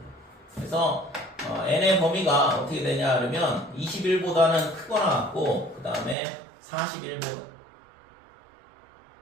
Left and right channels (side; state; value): left; drops out; at 6.2 s